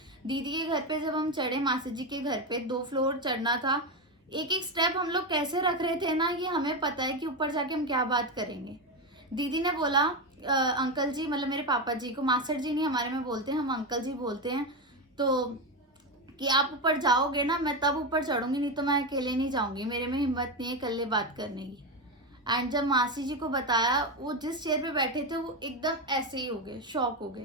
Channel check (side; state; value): both; normal; correlation 0.13